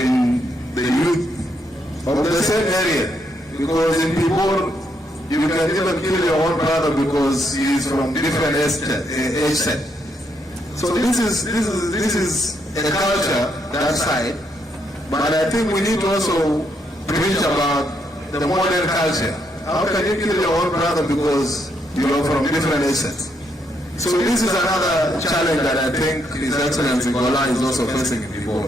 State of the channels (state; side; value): normal; both; correlation 0.76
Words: the youth of the same area. Because in Pibor, you can even kill your own brother because he is from different age set. So this is a culture, that side, but I think we need to also preach about the modern culture. How can you kill your own brother because you are from different age sets? So this is another challenge that I think His Excellency Gola is also facing in Pibor.